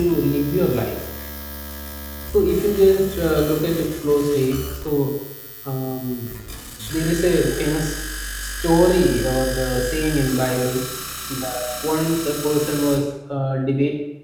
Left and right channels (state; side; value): identical; both; correlation 1.00